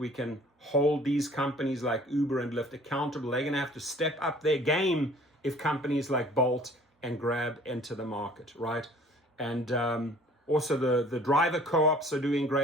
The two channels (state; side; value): normal; both; correlation 0.52